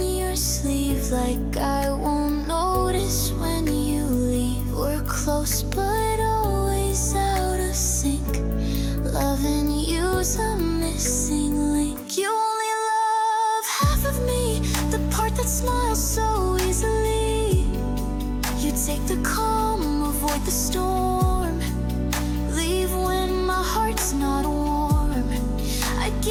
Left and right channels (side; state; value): both; identical; correlation 1.00